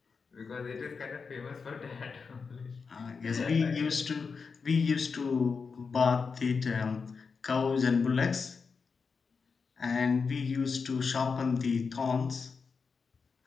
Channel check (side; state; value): right; quieter; 5.2 dB